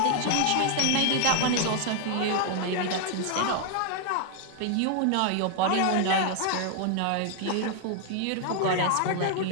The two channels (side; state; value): both; different; correlation 0.00